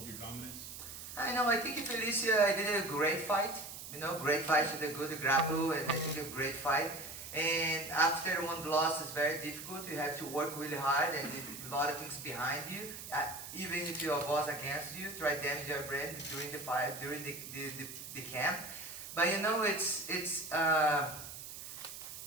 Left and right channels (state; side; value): noise; right; hiss, 10 dB below the sound